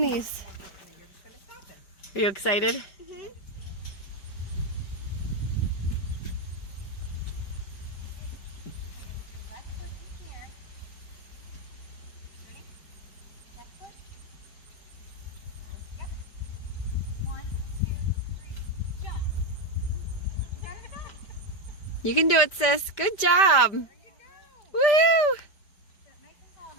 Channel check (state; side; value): late; right; 5.1 ms